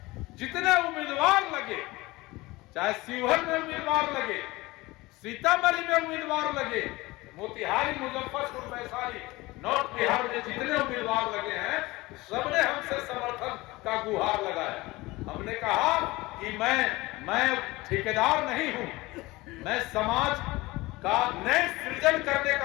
जितने उम्मीदवार लगे, चाहे शिवहर में उम्मीदवार लगे, सीतामढ़ी में उम्मीदवार लगे, मोतिहारी, मुजफ्फरपुर, वैशाली, नॉर्थ बिहार में जितने उम्मीदवार लगे हैं, सबने हमसे समर्थन का गुहार लगाया। हमने कहा कि मैं ठेकेदार नहीं हूं, मैं समाज का नए सृजन करने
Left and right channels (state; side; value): quieter; right; 20.9 dB